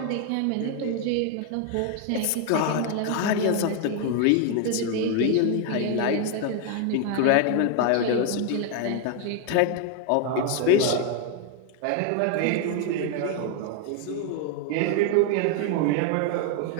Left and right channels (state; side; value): different; both; correlation 0.01